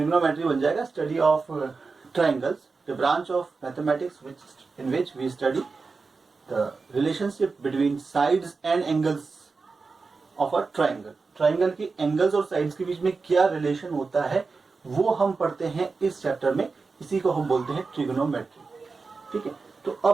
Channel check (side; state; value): left; quieter; 4.3 dB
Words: बन जाएगा study of triangles, the branch of mathematics in which we study the relationship between sides and angles of a triangle. Triangle की एंगल्स और साइड्स के बीच में क्या रिलेशन होता है, वो हम पढ़ते हैं इस चैप्टर में, इसी को हम बोलते हैं ट्रिग्नोमेट्री। ठीक है, तो